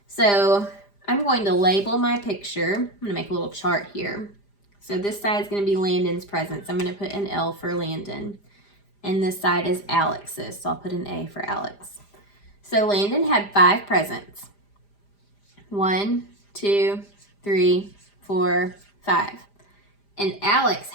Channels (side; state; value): right; late; 5.0 ms